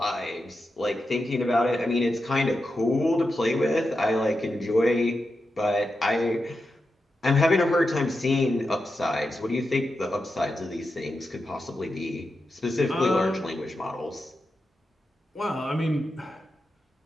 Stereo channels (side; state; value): both; normal; correlation 0.89